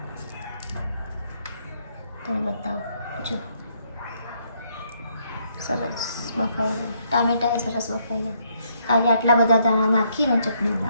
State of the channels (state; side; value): inverted; both; correlation -0.71